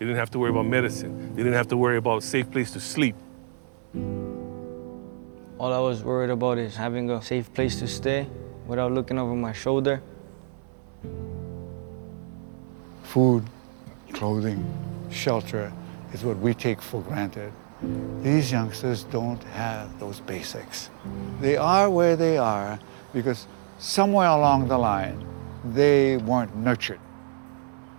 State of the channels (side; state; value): left; silent; 57 dB below the other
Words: didn't have to worry about medicine. They didn't have to worry about a safe place to sleep. All I was worried about is having a safe place to stay without looking over my shoulder. Food, clothing, shelter is what we take for granted. These youngsters don't have those basics. They are where they are because somewhere along the line, they weren't nurtured.